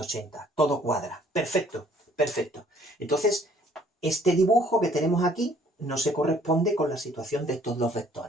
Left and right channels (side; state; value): both; normal; correlation 0.59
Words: Todo cuadra. Perfecto, perfecto. Entonces, este dibujo que tenemos aquí no se corresponde con la situación de estos dos